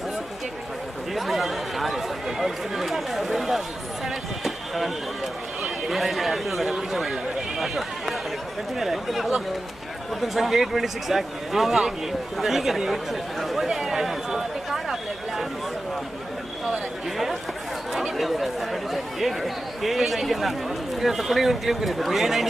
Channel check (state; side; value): noise; left; hum, 24 dB below the sound